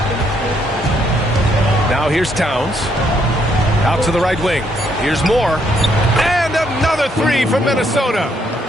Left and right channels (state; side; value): normal; both; correlation 0.72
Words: Now here's Towns. Out to the right wing. Here's Moore. And another 3 from Minnesota.